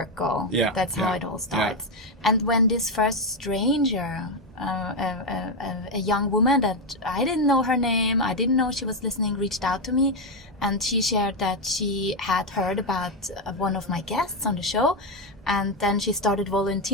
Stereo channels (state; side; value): normal; both; correlation 0.06